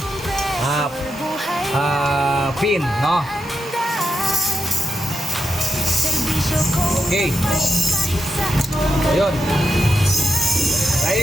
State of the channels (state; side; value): normal; both; correlation 0.85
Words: pin. No? Okay. Ayun.